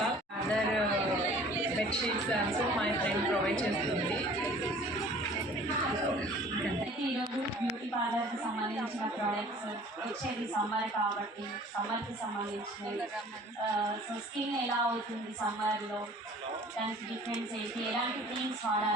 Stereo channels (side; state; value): both; normal; correlation 0.49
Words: all, other bed sheets also my friend provide చేస్తుంది. ఈరోజు బ్యూటీ పార్లర్కి సంబంధించిన ప్రోడక్ట్స్ వచ్చేది సమ్మర్ కాబట్టి సమ్మర్కి సంబంధించినవి. సో స్కిన్ ఎలా అవుతుంది సమ్మర్లో, దానికి డిఫరెన్స్ ఏంటి, ఎలాంటి క్రీమ్స్